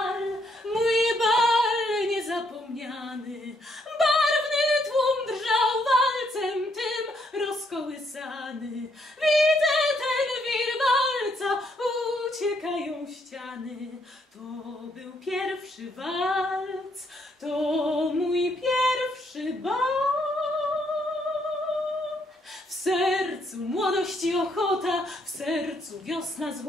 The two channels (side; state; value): both; normal; correlation 0.72